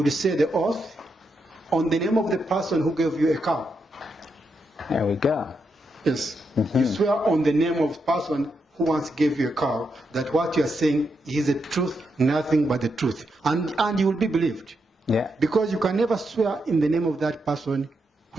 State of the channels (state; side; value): normal; both; correlation 0.83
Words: say the oath on the name of the person who gave you a cow. There we go. Yes. You swear on the name of the person who once gave you a cow that what you are saying is the truth, nothing but the truth. And you will be believed. Yeah. Because you can never swear in the name of that person